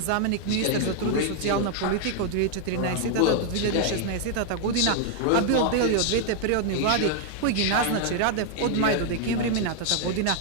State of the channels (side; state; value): both; different; correlation 0.00